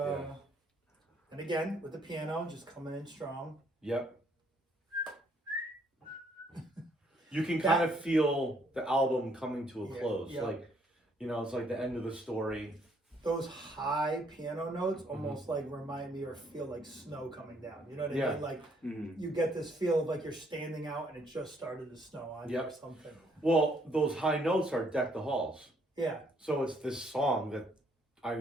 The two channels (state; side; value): normal; both; correlation 0.68